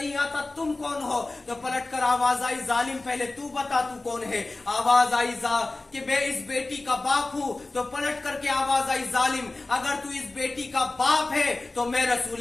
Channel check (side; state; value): right; quieter; 3.1 dB